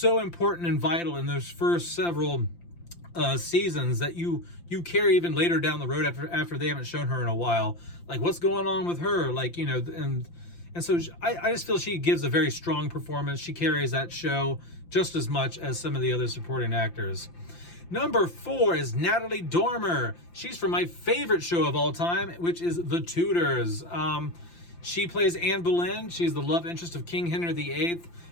important and vital in those first several seasons that you carry even later down the road after they haven't shown her in a while. Like, what's going on with her? Like, you know, and so I just feel she gives a very strong performance. She carries that show just as much as some of the other supporting actors. Number 4 is Natalie Dormer. She's from my favorite show of all time, which is The Tudors. She plays Anne Boleyn. She's the love interest of King Henry VIII,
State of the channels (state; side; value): late; right; 5.8 ms